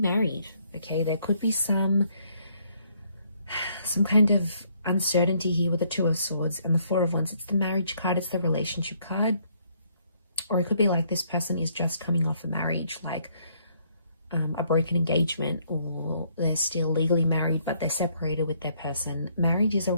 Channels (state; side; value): inverted; both; correlation -0.68